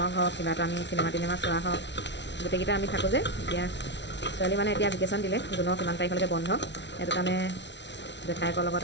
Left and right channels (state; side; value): late; right; 0.51 ms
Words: হওক, কিবা এটা আমি চিনেমা টিনেমা চোৱা হওক, গোটেইকেইটা আমি থাকোঁ যে। এতিয়া ছোৱালী মানে এতিয়া ভেকেশ্যন দিলে, জুনৰ কিমান তাৰিখলৈকে বন্ধ, সেইটো কাৰণে জেঠাইকৰ লগত